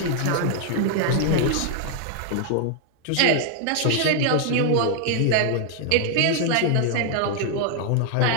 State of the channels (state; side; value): different; both; correlation 0.00